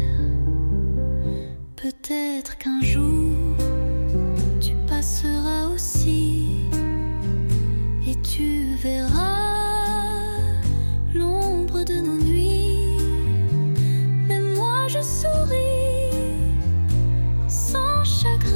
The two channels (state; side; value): inverted; both; correlation -1.00